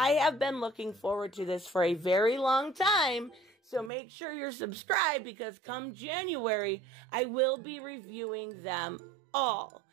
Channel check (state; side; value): drops out; left; at 3.9 s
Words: have been looking forward to this for a very long time, so make sure you're subscribed, because come January, I will be reviewing them all.